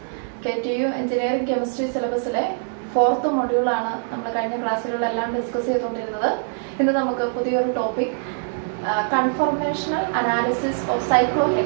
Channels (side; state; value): left; silent; 63 dB below the other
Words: KTU engineering chemistry സിലബസിലെ 4th മൊഡ്യൂളാണ് നമ്മൾ കഴിഞ്ഞ ക്ലാസ്സുകളിലെല്ലാം ഡിസ്കസ് ചെയ്തുകൊണ്ടിരുന്നത്. ഇന്ന് നമുക്ക് പുതിയൊരു topic, conformational analysis of